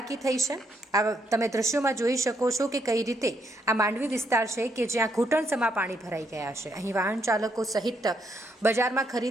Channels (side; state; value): both; normal; correlation 0.75